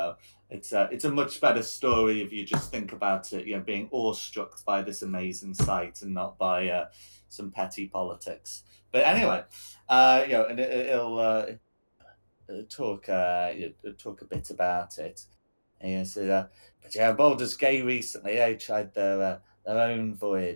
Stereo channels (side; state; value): both; inverted; correlation -1.00